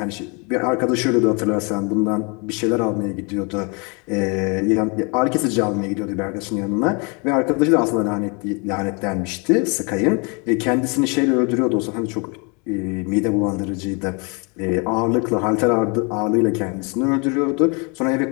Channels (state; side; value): quieter; right; 32.4 dB